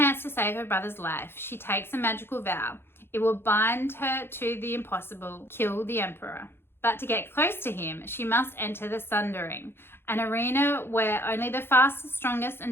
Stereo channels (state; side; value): late; right; 0.11 ms